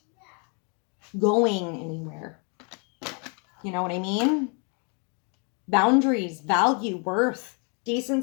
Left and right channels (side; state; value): right; quieter; 36.7 dB